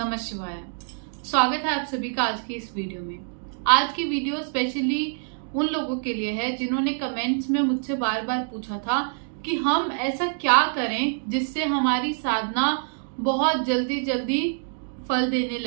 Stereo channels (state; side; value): silent; left; digital silence